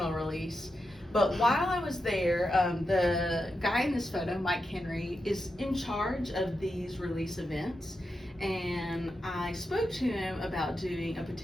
release. But while I was there, the guy in this photo, Mike Henry, is in charge of these release events. And I spoke to him about doing a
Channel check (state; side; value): normal; both; correlation 0.88